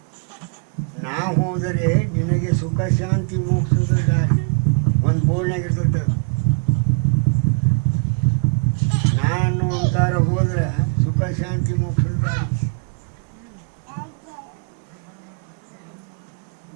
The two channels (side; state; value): left; quieter; 37.0 dB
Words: ನಾ ಹೋದರೆ ನಿನಗೆ ಸುಖ ಶಾಂತಿ ಮೋಕ್ಷದ ದಾರಿ. ಒಂದು ಬೋರ್ಡ್ನಾಗ ಇರ್ತೈತೆ, ನಾನು ಅಂತಾರ ಹೋದ್ರೆ ಸುಖ ಶಾಂತಿ ಮೋಕ್ಷದ ದಾರಿ.